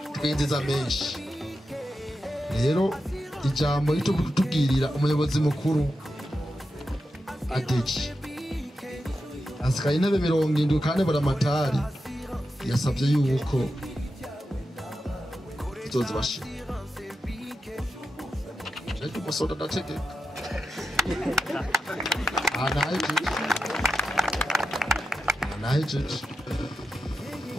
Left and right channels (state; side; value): normal; both; correlation 0.89